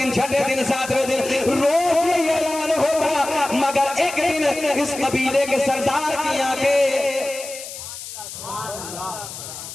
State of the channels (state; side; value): noise; left; hiss, 11 dB below the sound